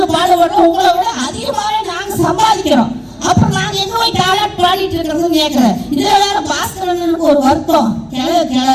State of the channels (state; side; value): identical; both; correlation 1.00